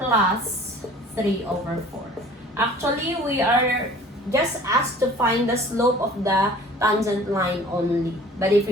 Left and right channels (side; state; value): both; normal; correlation 0.48